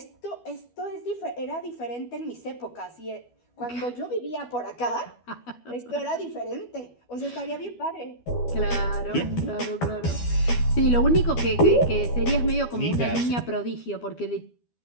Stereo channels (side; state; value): right; late; 12 ms